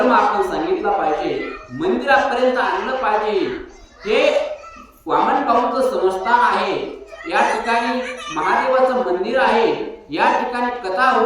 आपण सांगितला पाहिजे, मंदिरापर्यंत आणलं पाहिजे. हे वामन भाऊंचं संस्थान आहे, या ठिकाणी महादेवाचं मंदिर आहे, या ठिकाणी कथा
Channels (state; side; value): identical; both; correlation 1.00